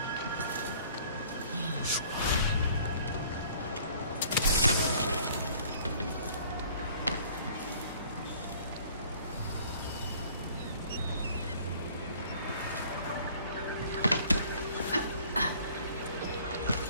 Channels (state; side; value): inverted; both; correlation -0.54